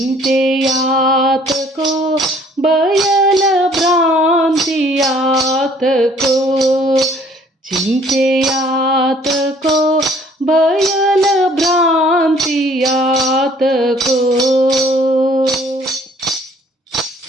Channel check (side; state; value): both; normal; correlation 0.58